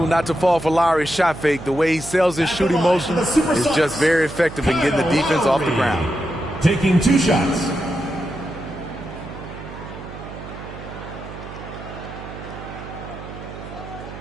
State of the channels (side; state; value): right; noise; hum, 12 dB below the sound